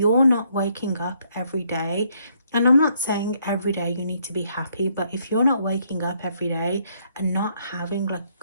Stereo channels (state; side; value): inverted; both; correlation -0.71